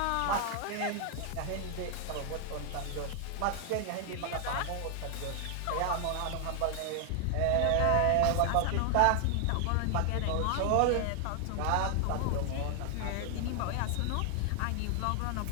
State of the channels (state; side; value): different; both; correlation 0.00